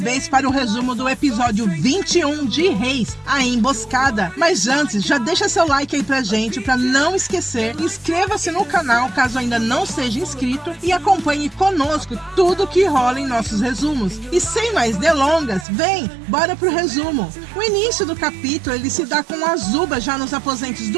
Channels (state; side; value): drops out; left; at 15.7 s